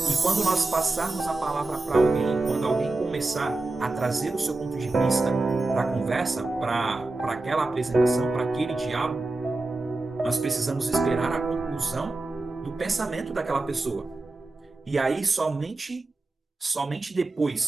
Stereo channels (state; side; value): quieter; left; 3.1 dB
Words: quando nós passarmos a palavra para alguém, quando alguém começar a trazer o seu ponto de vista para a conversa, para aquela apresentação, para aquele diálogo, nós precisamos esperar a conclusão do pensamento daquela pessoa. E aí, somente